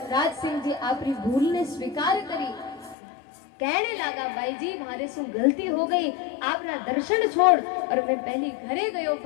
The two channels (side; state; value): right; drops out; at 3.0 s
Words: राज सिंह जी आपरी भूल ने स्वीकार करी। कहने लगा भाई जी मारे सु गलती हो गई, आपना दर्शन छोड़ और मैं पहली घरे गयो